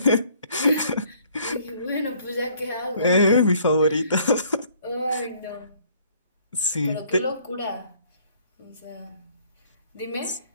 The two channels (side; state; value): both; inverted; correlation -0.61